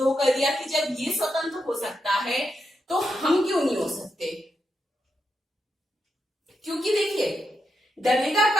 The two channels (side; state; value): both; normal; correlation 0.85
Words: कर दिया कि जब ये स्वतंत्र हो सकता है तो हम क्यों नहीं हो सकते। क्योंकि देखिए डरेगा